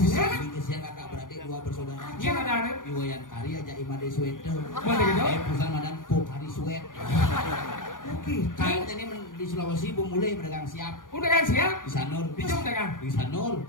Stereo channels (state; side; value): late; right; 0.89 ms